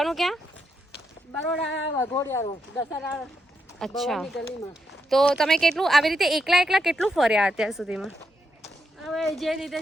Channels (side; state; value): both; normal; correlation 0.82